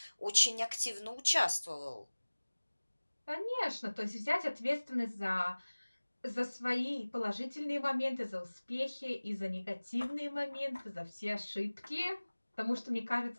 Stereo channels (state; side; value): inverted; both; correlation -1.00